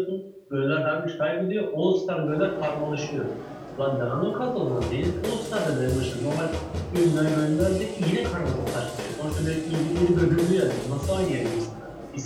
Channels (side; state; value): both; identical; correlation 1.00